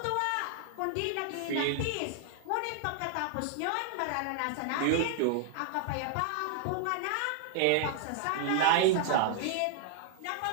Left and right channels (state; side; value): different; both; correlation 0.00